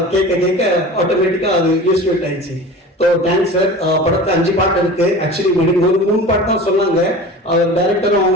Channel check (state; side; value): normal; both; correlation 0.36